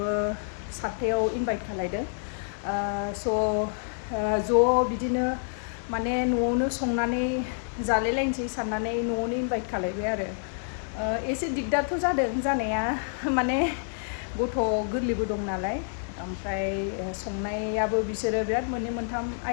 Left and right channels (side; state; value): right; silent; digital silence